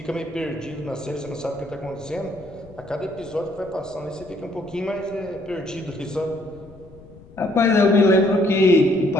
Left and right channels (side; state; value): left; noise; rumble, 22 dB below the sound